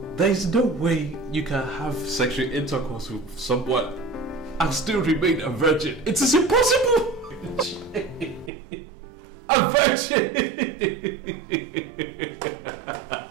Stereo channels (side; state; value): left; drops out; at 8.5 s